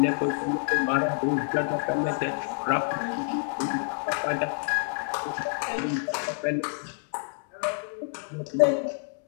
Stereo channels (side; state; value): right; silent; 59 dB below the other